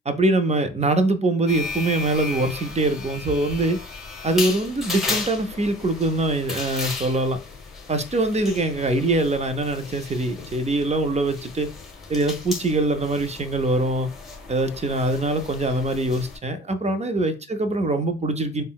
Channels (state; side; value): normal; both; correlation 0.46